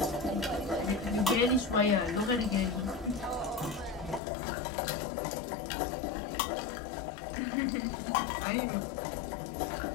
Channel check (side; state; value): right; drops out; at 4.2 s